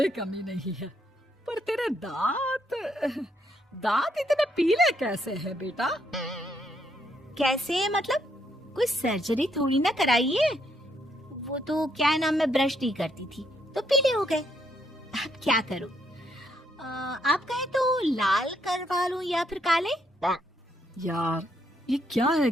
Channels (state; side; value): normal; both; correlation 0.74